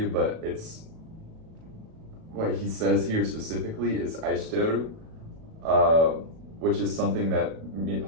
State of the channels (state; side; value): late; left; 37 ms